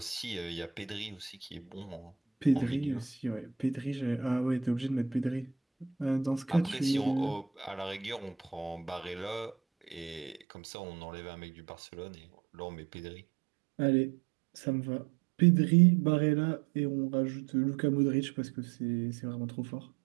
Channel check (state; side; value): drops out; left; at 10.4 s